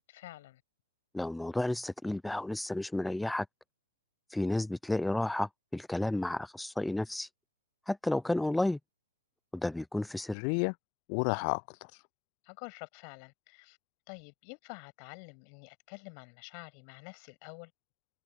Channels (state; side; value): drops out; right; at 10.4 s